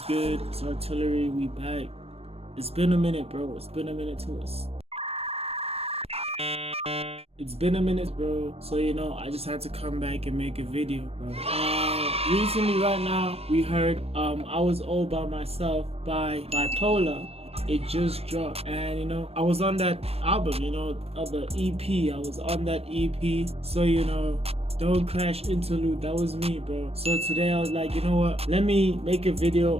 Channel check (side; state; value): left; late; 0.29 ms